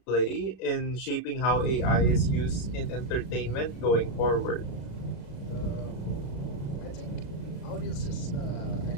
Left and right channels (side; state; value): right; late; 36 ms